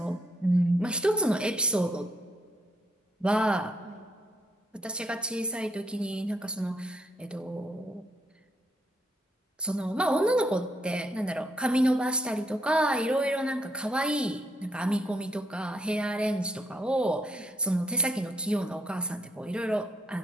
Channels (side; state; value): both; normal; correlation 0.70